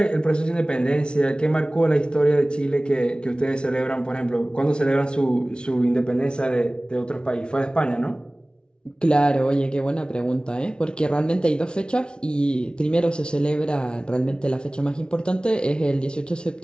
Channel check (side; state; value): right; late; 0.055 ms